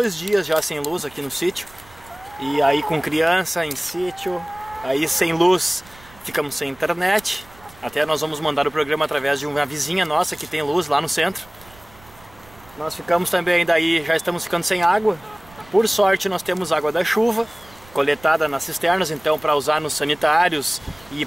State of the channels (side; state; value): right; noise; rumble, 25 dB below the sound